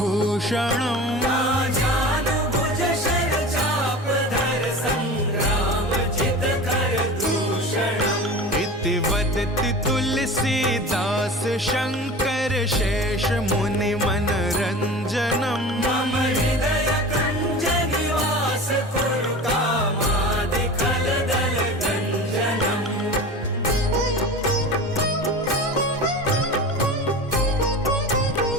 वदति तुलसीदास शंकर शेष मुनि मनरंजनम मम हृदय कंज निवास कुरु कामादि खलदल गंजनम।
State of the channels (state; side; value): normal; both; correlation 0.34